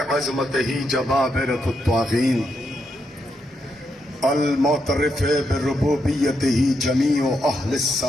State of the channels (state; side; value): normal; both; correlation 0.81